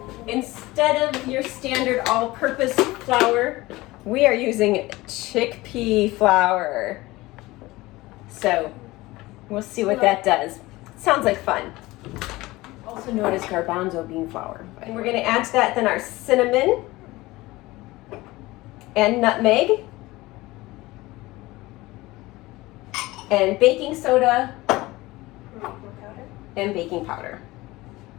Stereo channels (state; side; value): quieter; right; 19.8 dB